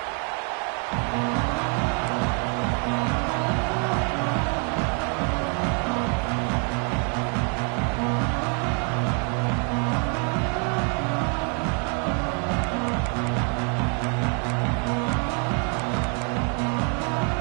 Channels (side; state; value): left; quieter; 39.8 dB